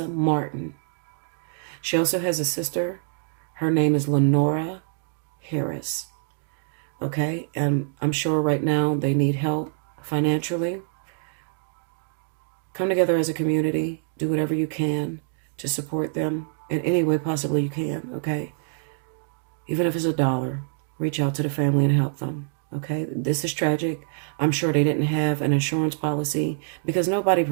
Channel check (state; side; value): silent; left; digital silence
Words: Martin. She also has a sister. Her name is Lenora Harris. Okay? And I'm sure right now they need help financially. Come together as a community. Do whatever you can to support them in any way possibly you can. Okay? Even if it's $1, reach out to the family and help them. Okay, this is tragic. I'm sure they didn't have an insurance policy, because nobody